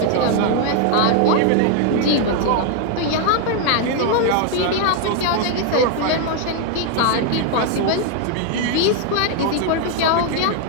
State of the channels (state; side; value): different; both; correlation 0.00